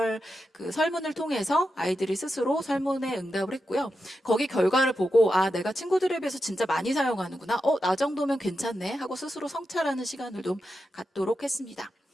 설문을 통해서 아이들이 스스로 설문에 응답을 했고요. 거기 결과를 보고 내가 친구들에 비해서 진짜 많이 사용하는구나. 나 정도면 괜찮네 하고 스스로 성찰하는 시간을 좀 갖도록 했습니다.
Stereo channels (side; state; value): both; normal; correlation 0.88